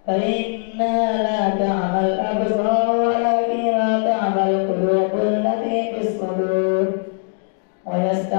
فإنها لا تعمى الأبصار ولكن تعمى القلوب التي في الصدور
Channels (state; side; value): silent; right; 66 dB below the other